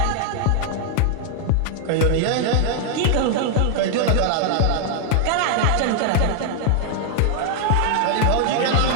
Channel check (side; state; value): both; different; correlation 0.00